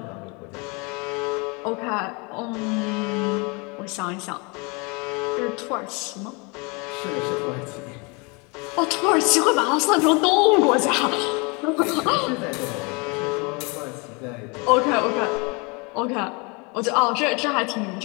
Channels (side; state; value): right; quieter; 30.0 dB